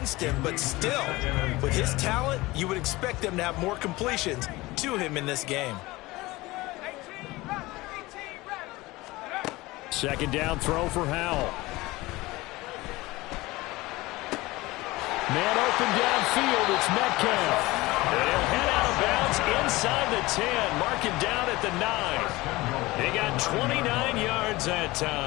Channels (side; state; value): right; quieter; 20.4 dB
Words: him, but still, with his talent, you would expect them to have more completions to him in this game. Second down throw for Howell. Man open downfield, it's Metcalf. And he'll head out of bounds inside the 10. Mark it down at the 9. He got 29 yards that